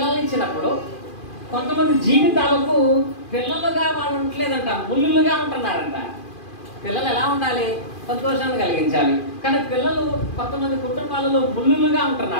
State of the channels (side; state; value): right; late; 2.4 ms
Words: ఇచ్చినప్పుడు కొంతమంది జీవితాలకు పిల్లలుగా వాళ్ళు ఉండలేదంట, ముళ్ళులుగా ఉంటున్నారంట. పిల్లలు ఎలా ఉండాలి? సంతోషాన్ని కలిగించాలి. కానీ పిల్లలు కొంతమంది కుటుంబాలలో ముళ్ళులుగా